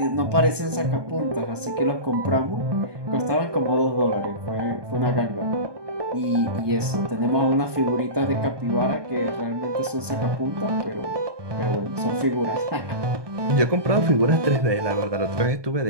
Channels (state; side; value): late; left; 1.2 ms